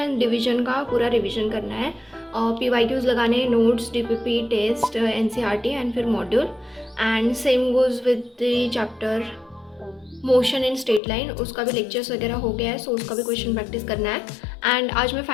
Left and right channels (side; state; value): right; drops out; at 11.0 s